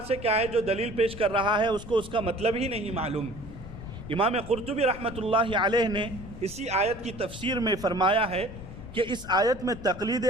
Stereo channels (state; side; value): noise; left; rumble, 13 dB below the sound